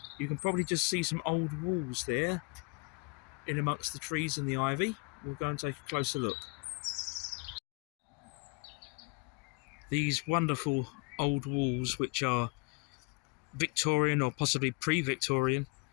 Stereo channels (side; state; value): right; quieter; 30.9 dB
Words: You can probably just see some old walls there in amongst the trees and the ivy. We'll go and take a closer look. These wonderful old walls, which are Victorian or possibly pre-Victorian,